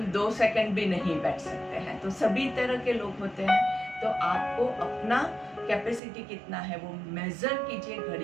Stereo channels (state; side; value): drops out; left; at 6.0 s